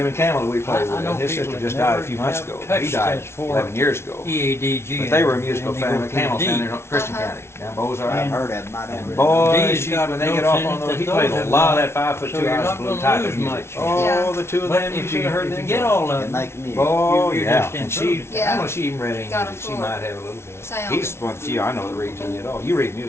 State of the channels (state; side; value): late; right; 0.12 ms